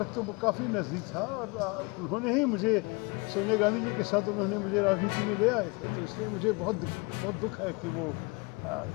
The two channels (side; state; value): right; quieter; 28.3 dB